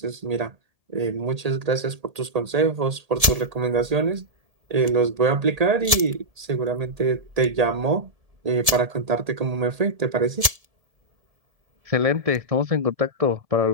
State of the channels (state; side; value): late; left; 1.7 ms